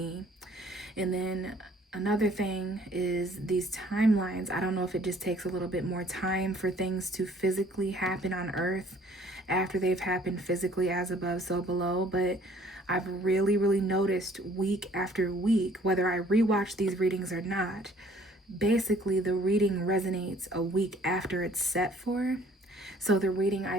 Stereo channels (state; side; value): normal; both; correlation 0.57